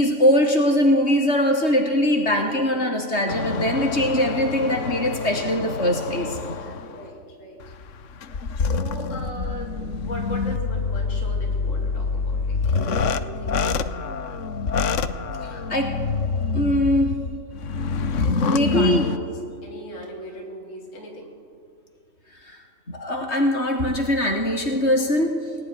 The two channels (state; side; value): late; right; 3.2 ms